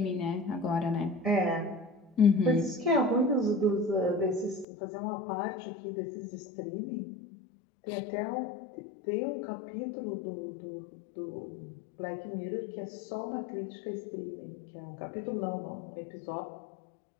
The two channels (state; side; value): drops out; right; at 4.7 s